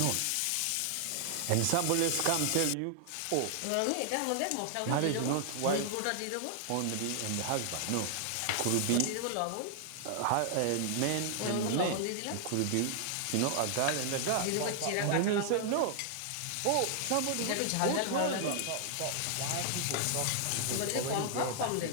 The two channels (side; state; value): both; different; correlation 0.00